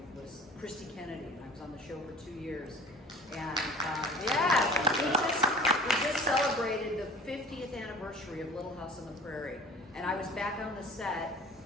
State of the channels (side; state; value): both; normal; correlation 0.44